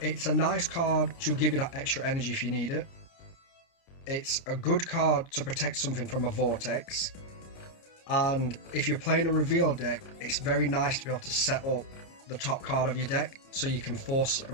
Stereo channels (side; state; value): right; late; 30 ms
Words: It's a nice card to give you that extra energy if you need it. It's a good card to protect something from a vortex. And if you're playing a reveal deck, it's very nice to be able to set up the top card of your deck so you can force a